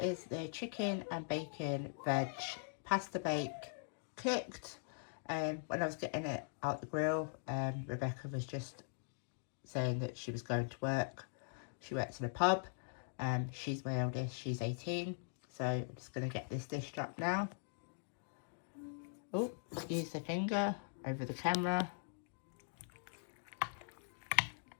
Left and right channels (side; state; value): right; silent; digital silence